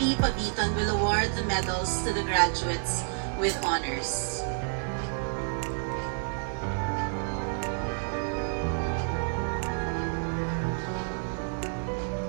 Pabiton, will award the medals to the graduates with honors.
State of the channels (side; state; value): left; silent; 58 dB below the other